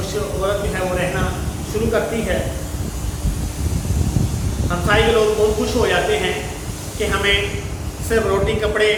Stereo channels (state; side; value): identical; both; correlation 1.00